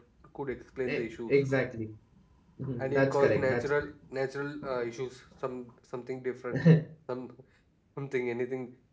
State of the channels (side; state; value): both; identical; correlation 1.00